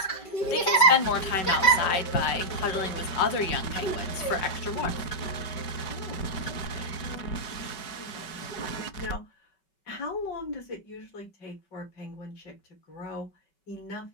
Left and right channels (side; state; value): right; late; 5.3 ms